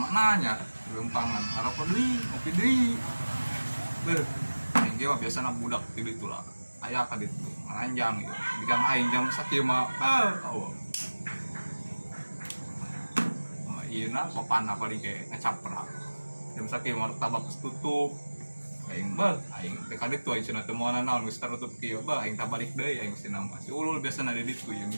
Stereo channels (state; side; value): inverted; both; correlation -1.00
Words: lempangan harap deui ngopi deui beuh aing ge biasa budak di ditu lah aya ka ditu ngaranjang gitu bigang aing jam sakieu mah ieu na papanna paling ge ngacaprak jam sakieu mah tabak tutup aing aing teh ka ditu aing cenah teu moal naon geus tertutup kieu aing tabalik deui aing cenah mah si ulul biasana di ditu yang